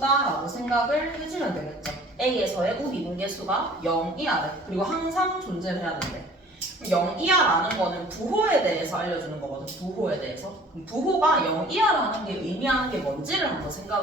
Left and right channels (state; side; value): normal; both; correlation 0.50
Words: 생각을 해주면 되겠죠. a에서의 우미분계수가 0이야 돼. 그리고 항상 존재를 해야 된대. 0이야라는 거는 부호에 대해서 알려주는 거거든. 부호에 대해서. 부호가 0이야라는 게 의미하는 게 뭔지를 한번